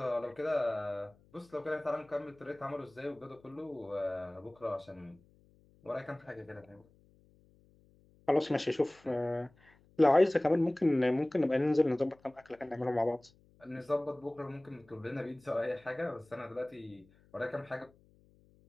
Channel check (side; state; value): left; noise; hum, 30 dB below the sound